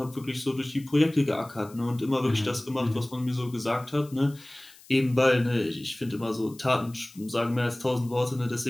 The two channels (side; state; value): left; noise; hiss, 23 dB below the sound